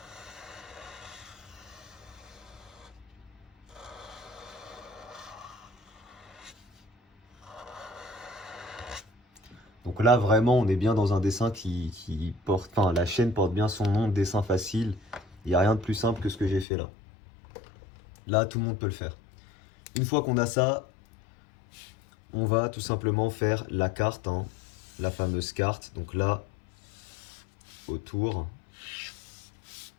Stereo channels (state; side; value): drops out; right; at 16.7 s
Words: Donc là, vraiment, on est bien dans un dessin qui porte... Enfin, la chaîne porte bien son nom, dessin facile. Il n'y a rien de plus simple que ce que j'ai fait là. Là, tout le monde peut le faire. Une fois qu'on a ça, on va tout simplement faire la carte, la fameuse carte. Donc là, autour.